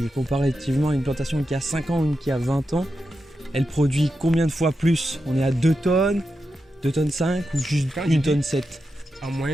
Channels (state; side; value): normal; both; correlation 0.88